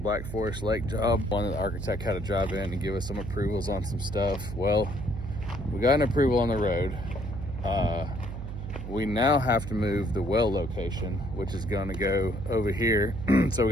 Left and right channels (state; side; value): noise; right; hum, 7 dB below the sound